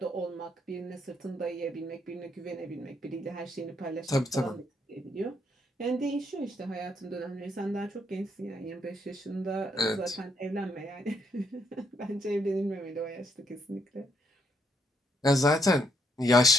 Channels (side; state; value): both; normal; correlation 0.74